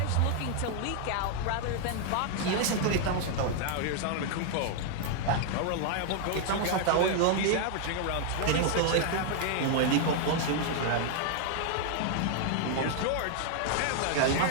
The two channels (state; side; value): different; both; correlation 0.00